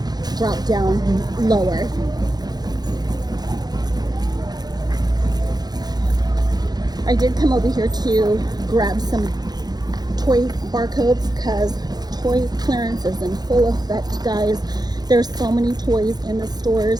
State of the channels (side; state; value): left; late; 0.19 ms